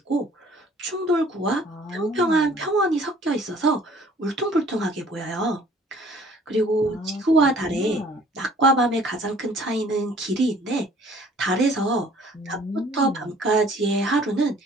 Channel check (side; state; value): both; normal; correlation 0.55